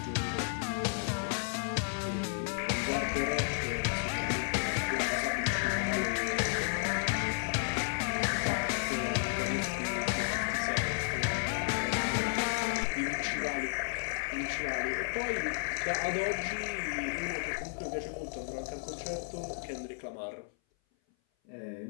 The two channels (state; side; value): silent; right; 56 dB below the other